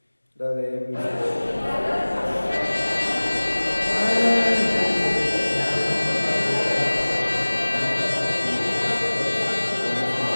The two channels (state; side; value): inverted; both; correlation -1.00